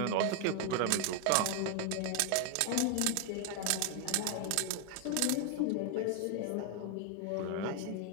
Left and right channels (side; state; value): both; different; correlation 0.00